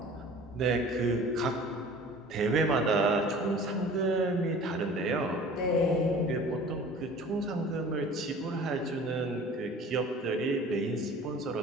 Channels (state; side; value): normal; both; correlation 0.45